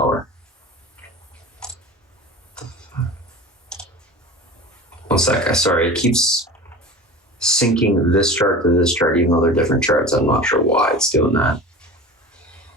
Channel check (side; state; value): both; normal; correlation 0.34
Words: One sec, sorry, it keeps syncing this chart to this chart, even though they're different charts. I'm not sure why it's doing that.